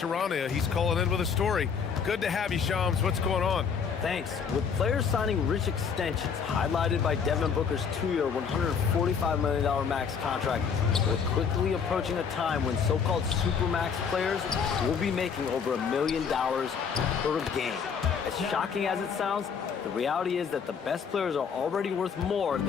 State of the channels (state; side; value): quieter; right; 6.5 dB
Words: He's calling in with a story. Good to have you, Shams. What's going on? Thanks. With players signing rich extensions, highlighted by Devin Booker's 2-year, $145 million max contract, we're quickly approaching a time when so-called supermax players will be making over $1 million per game. As shocking as it sounds, the reality is that the best players are already worth more